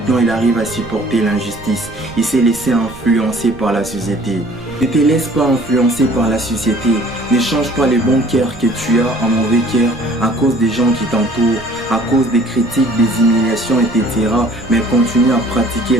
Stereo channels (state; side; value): noise; right; rumble, 19 dB below the sound